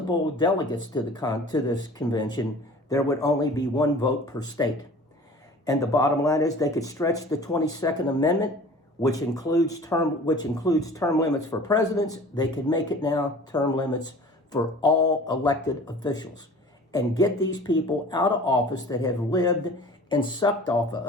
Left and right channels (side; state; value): both; normal; correlation 0.44